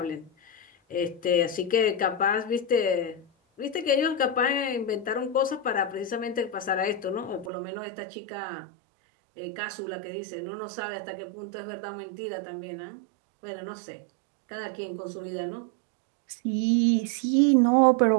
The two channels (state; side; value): drops out; left; at 7.5 s